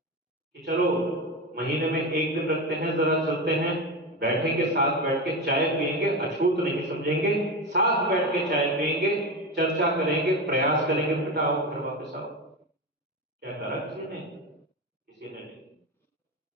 कि चलो महीने में एक दिन रखते हैं, जरा चलते हैं, बैठेंगे, साथ बैठ के चाय पिएंगे, अछूत नहीं समझेंगे, साथ बैठ के चाय पिएंगे, चर्चा करेंगे, प्रयास करेंगे, बेटा आओ घर वापस आओ। क्या करा किसी ने? किसी ने नहीं।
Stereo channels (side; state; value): both; normal; correlation 0.19